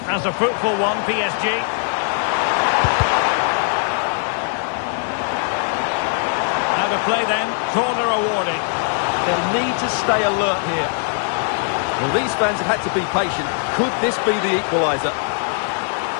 as a fruitful one, PSG. Play then, corner awarded. They'll need to stay alert here. Well, these fans have had to be patient. Could this be the equaliser?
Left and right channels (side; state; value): right; silent; 56 dB below the other